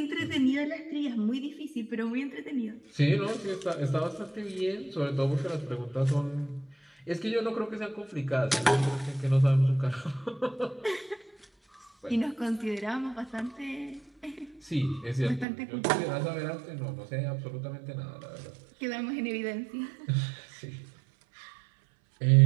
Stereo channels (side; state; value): left; drops out; at 15.5 s